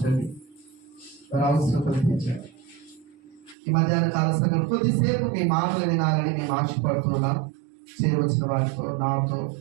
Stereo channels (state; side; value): drops out; left; at 3.6 s